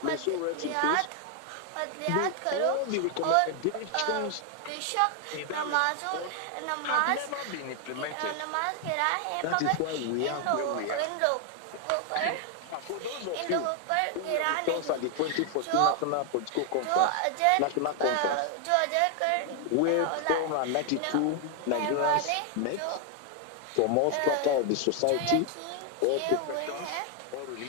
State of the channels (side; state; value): both; different; correlation 0.00